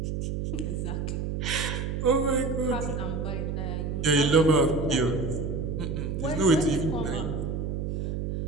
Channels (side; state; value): right; noise; hum, 2 dB below the sound